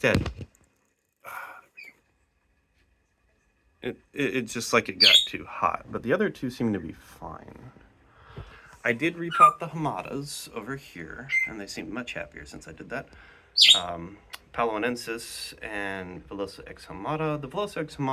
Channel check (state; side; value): identical; both; correlation 1.00